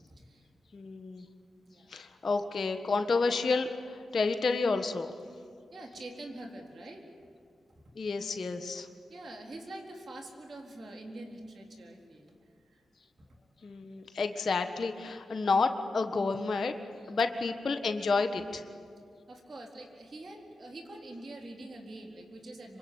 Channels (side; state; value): right; quieter; 3.4 dB